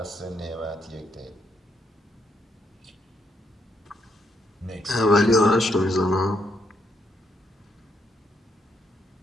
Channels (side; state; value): both; normal; correlation 0.76